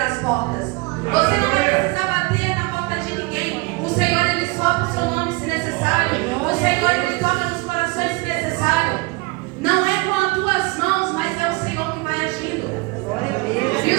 portas. Você não vai precisar bater na porta de ninguém. O Senhor ele sopra o seu nome se necessário. O Senhor ele toca nos corações se necessário. Não é com as tuas mãos, mas é o Senhor que vai agindo. E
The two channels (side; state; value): left; quieter; 25.4 dB